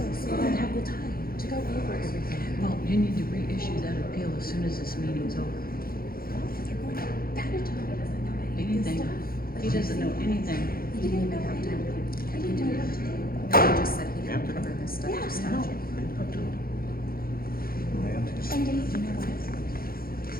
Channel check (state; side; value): late; right; 0.43 ms